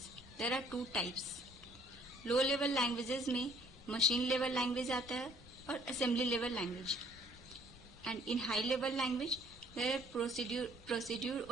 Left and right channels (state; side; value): normal; both; correlation 0.60